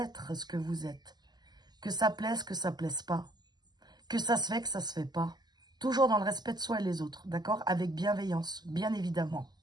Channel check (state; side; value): late; left; 0.20 ms